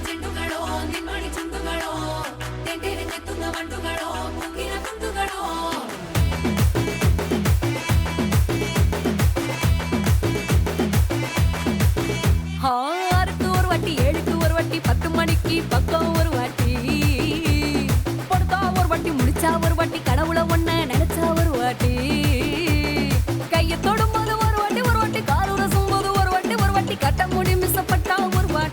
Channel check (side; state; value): both; identical; correlation 1.00